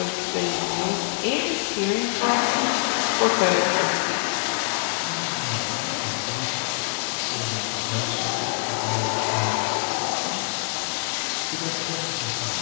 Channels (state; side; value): silent; right; digital silence